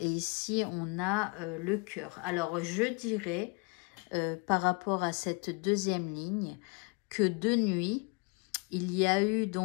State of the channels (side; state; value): right; quieter; 32.1 dB